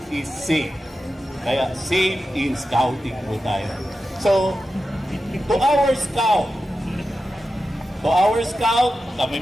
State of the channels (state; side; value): normal; both; correlation 0.91